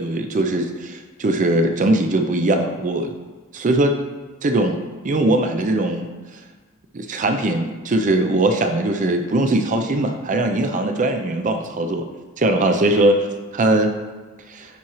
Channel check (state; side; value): normal; both; correlation 0.43